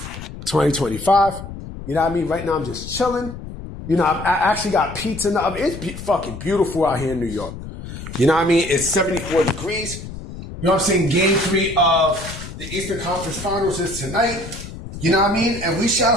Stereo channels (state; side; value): noise; left; rumble, 11 dB below the sound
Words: You know what I mean? Right now, I'm just chilling. You know, I actually got pizza in the oven. It's fucking beautiful out here in New York. You know what I mean? It's 74 degrees. You know what I'm saying? Game 3 of the Eastern Conference Finals is tonight. You know what I mean? And we shall